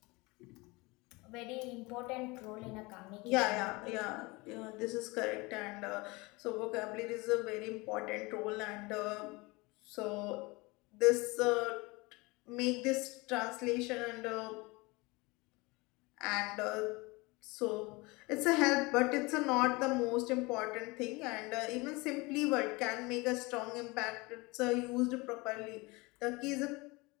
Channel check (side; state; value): right; quieter; 24.5 dB